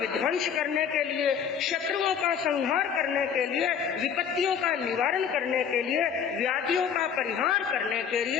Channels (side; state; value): right; quieter; 7.7 dB